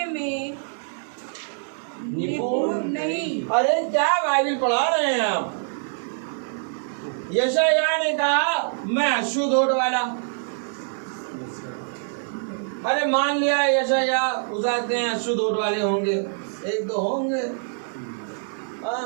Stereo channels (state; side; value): silent; left; digital silence